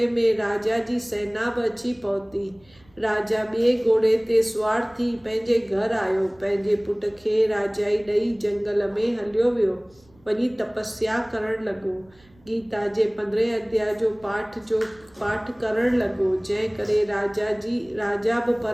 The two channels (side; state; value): right; noise; rumble, 30 dB below the sound